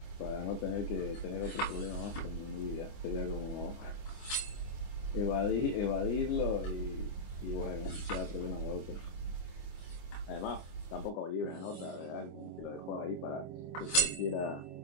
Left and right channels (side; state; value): right; late; 25 ms